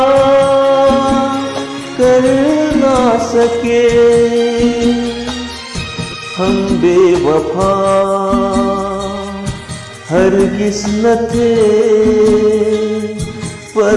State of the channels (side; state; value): both; identical; correlation 1.00